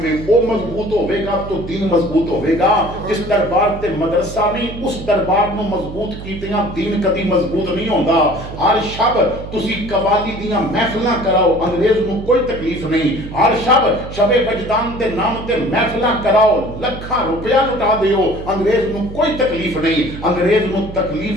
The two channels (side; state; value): right; noise; hum, 11 dB below the sound